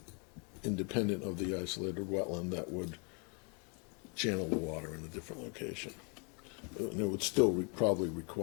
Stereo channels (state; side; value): quieter; right; 34.9 dB